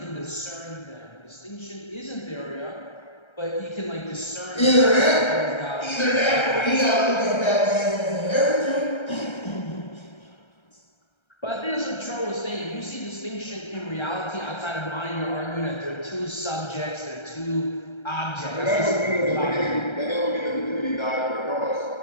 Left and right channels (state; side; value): late; right; 1.3 ms